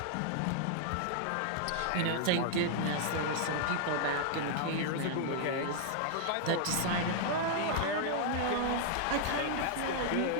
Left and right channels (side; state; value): both; different; correlation 0.00